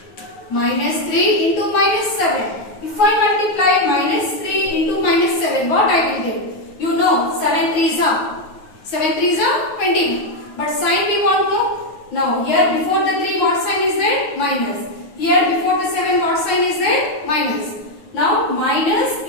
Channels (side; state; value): right; late; 9.4 ms